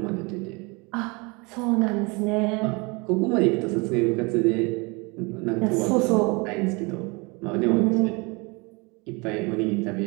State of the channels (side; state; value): left; quieter; 28.2 dB